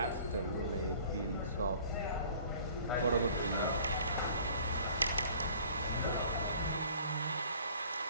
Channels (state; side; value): inverted; both; correlation -0.51